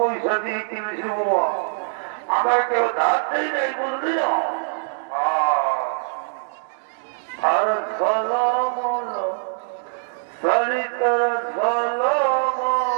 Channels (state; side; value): silent; left; digital silence